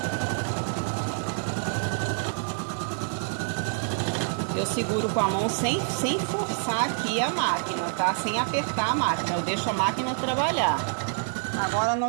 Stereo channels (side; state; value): left; silent; digital silence